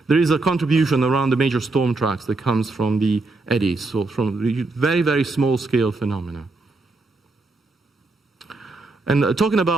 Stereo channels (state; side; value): quieter; left; 3.4 dB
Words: there is a contribution around the major storm tracks that comes from the eddies, so from very, very small-scale phenomena. And talking